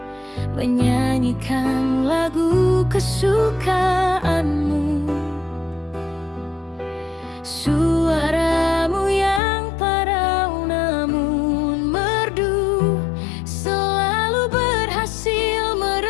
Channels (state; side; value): drops out; right; at 9.4 s